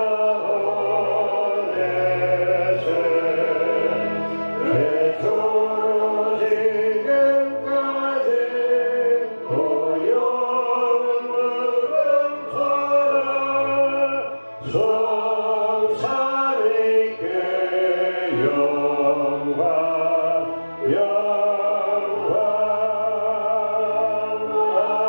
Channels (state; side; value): inverted; both; correlation -1.00